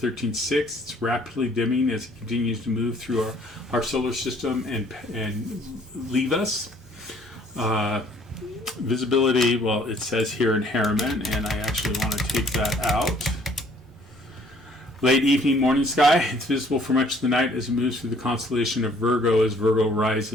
It's rapidly dimming as it continues to move through our solar system and leave us. Visibility, well, it says here in Harriman, and I actually want to take that out. Late evening, morning sky. It's visible for much of the night as it moves through the constellation of Virgo, as Virgo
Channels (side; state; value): both; normal; correlation 0.59